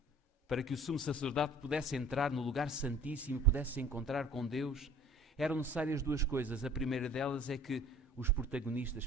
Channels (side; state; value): both; normal; correlation 0.49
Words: para que o sumo sacerdote pudesse entrar no lugar santíssimo e pudesse se encontrar com Deus, eram necessárias duas coisas. A primeira delas é que os protagonistas